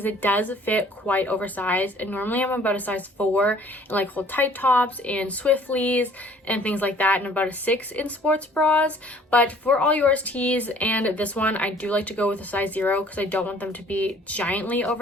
it does fit quite oversized, and normally I'm about a size 4 in like hold tight tops and Swifties and things like that, and about a 6 in sports bras. But for all yours tees and this one, I do like to go with a size 0 because I don't want them to be giantly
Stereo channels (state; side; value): normal; both; correlation 0.55